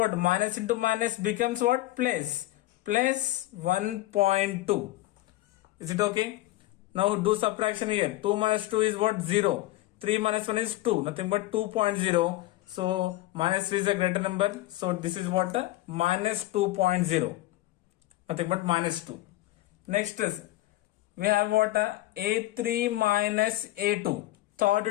Minus into minus becomes what? Plus 1.2. Is it okay? Now do subtraction here. 2 minus 2 is what? 0. 3 minus 1 is 2. Nothing but 2.0. So minus 3 is a greater number. So this is what? Minus 2.0. Nothing but minus 2. Next is we have what? A3 minus A2.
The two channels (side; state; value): right; quieter; 16.9 dB